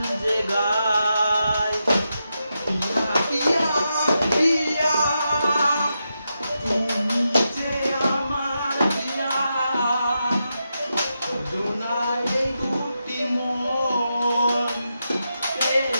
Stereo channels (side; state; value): both; inverted; correlation -0.86